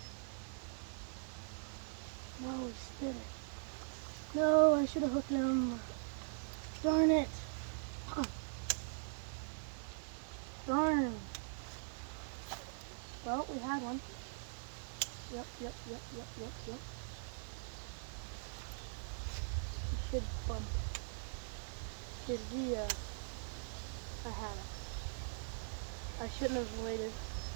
No, he spit it. No, I should have hooked him. Darn it. Darn. Well, we had one. Yep. He should bump. Because I had it. I shouldn't have waited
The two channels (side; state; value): left; silent; digital silence